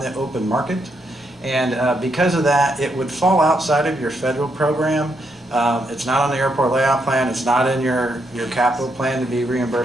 open market. And because of that, it would fall outside of your federal program. It's not on the airport layout plan. It's not in your capital plan to be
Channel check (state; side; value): normal; both; correlation 0.79